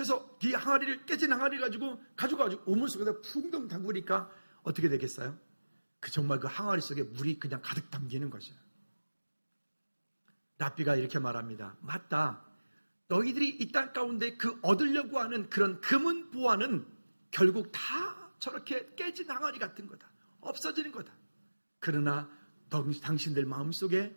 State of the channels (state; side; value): inverted; both; correlation -1.00